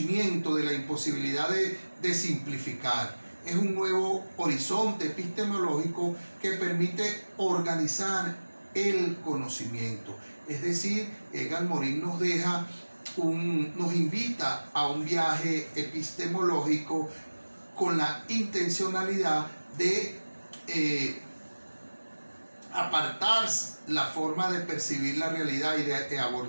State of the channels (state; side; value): inverted; both; correlation -1.00